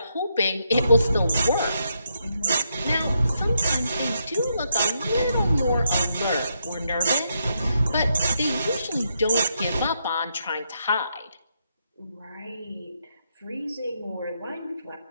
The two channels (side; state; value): both; inverted; correlation -0.79